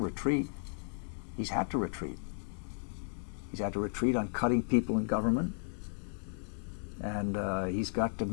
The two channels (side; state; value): right; silent; 55 dB below the other